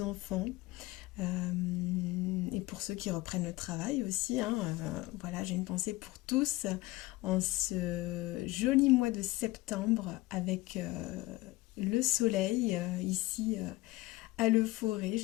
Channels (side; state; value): right; quieter; 19.5 dB